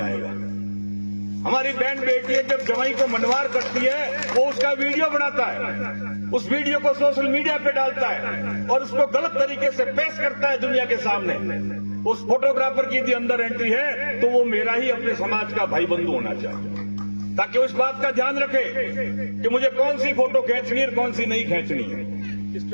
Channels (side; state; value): both; inverted; correlation -1.00